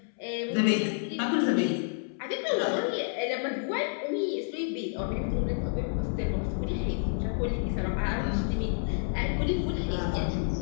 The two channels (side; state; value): right; silent; 58 dB below the other